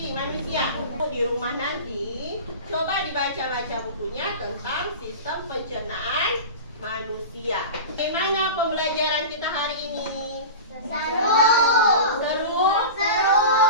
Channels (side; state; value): both; inverted; correlation -0.31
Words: manusia. Di rumah nanti, coba dibaca-baca bukunya tentang sistem pencernaan manusia. Bagaimana pembelajaran kita hari ini? Seru. Seru? Seru.